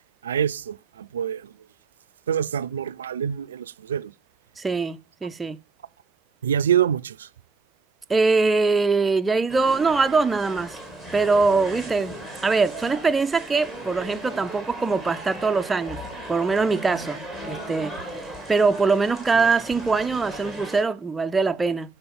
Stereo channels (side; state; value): left; quieter; 4.2 dB